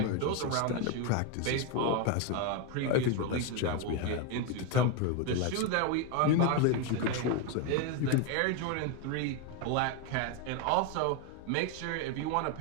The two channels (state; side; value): different; both; correlation 0.02